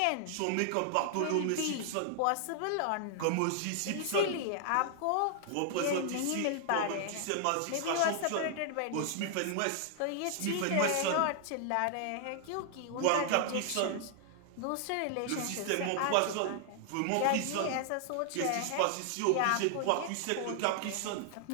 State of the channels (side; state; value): both; different; correlation 0.00